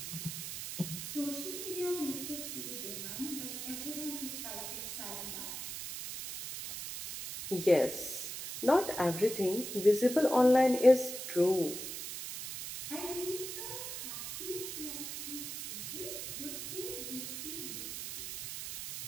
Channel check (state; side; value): noise; right; hiss, 7 dB below the sound